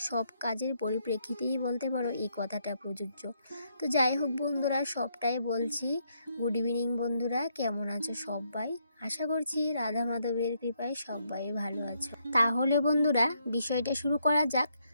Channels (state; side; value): inverted; both; correlation -0.75